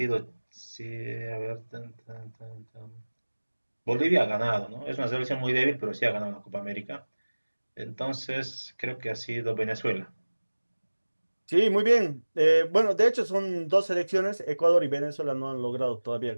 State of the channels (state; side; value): inverted; both; correlation -1.00